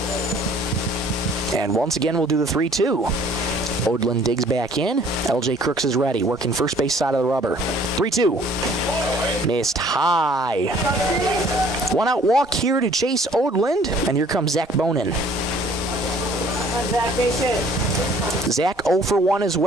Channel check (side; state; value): both; normal; correlation 0.56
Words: And once again, we'll do the 3-2. Odlin digs back in. LJ Crooks is ready, working first base side of the rubber. 3-2. Missed high. 1-out walk here to Chase Odland, and here comes Zach Bonin. Zach, base hit. Zach 0 for 1 as